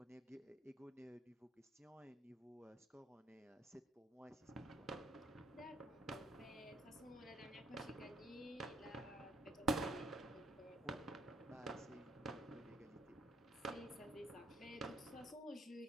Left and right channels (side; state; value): both; normal; correlation 0.66